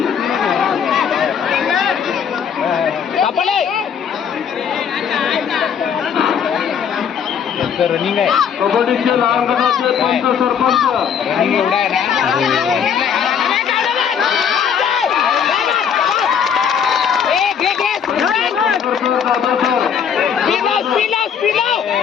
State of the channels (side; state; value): right; quieter; 7.6 dB